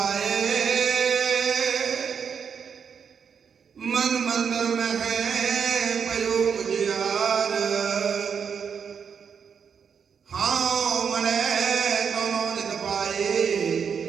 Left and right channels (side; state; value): left; quieter; 6.8 dB